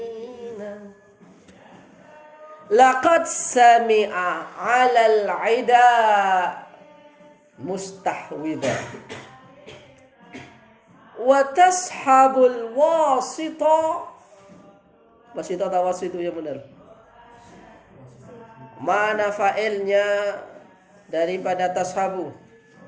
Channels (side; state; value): both; identical; correlation 1.00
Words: Laqad sami'a 'alal 'ida mustahwida wa tashabul wasita. Wasita atau wasitu yang benar? Mana fa'ilnya daripada tashabu?